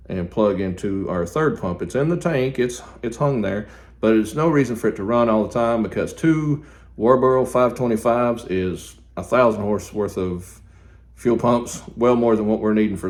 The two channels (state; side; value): identical; both; correlation 1.00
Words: and plug into our third pump. It's in the tank, it's hung there, but there's no reason for it to run all the time, because two Warburg 525s is 1,000 horse worth of fuel pumps, well more than what we're needing